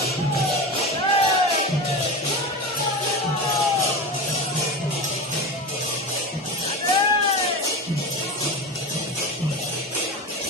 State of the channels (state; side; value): normal; both; correlation 0.24